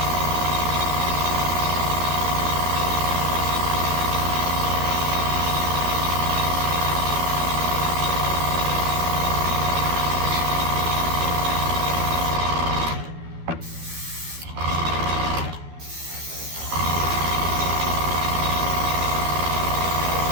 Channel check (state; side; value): late; left; 12 ms